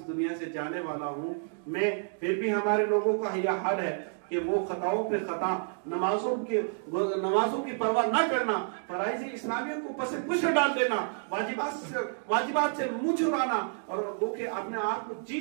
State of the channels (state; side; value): silent; left; digital silence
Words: دنیا سے جانے والا ہوں۔ میں پھر بھی ہمارے لوگوں کا یہ حال ہے کہ وہ خطاؤں پہ خطا، نمازوں کی پرواہ نہ کرنا، فرائض اسلامیہ کو پس پش ڈال دینا، واجبات سے منہ چھڑانا، اور وہ کہ اپنے آپ کو